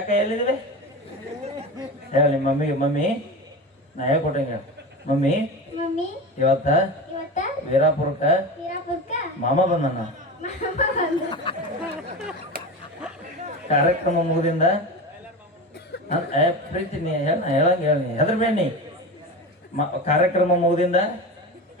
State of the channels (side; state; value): both; normal; correlation 0.26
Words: ಎಲ್ಲಿದ್ದೀವಿ ಹೇಳ ನಿಮ್ಮ ಮಮ್ಮಿಗೆ. ಮಮ್ಮಿ ನಾ ಹೇಳ್ಕೊಟ್ಟಂಗೆ ಮಮ್ಮಿ ಮಮ್ಮಿ ಇವತ್ತ ವೀರಾಪುರಕ್ಕ ಮಾಮ ಬಂದಣ್ಣ. ಕಾರ್ಯಕ್ರಮ ಮುಗಿದಿಂದ ಪ್ರೀತಿ ನೀ ಹೇಳಂಗ ಹೇಳಿ ಹೆದ್ರ ಬೇಣಿ ಕಾರ್ಯಕ್ರಮ ಮುಗಿದಿಂದ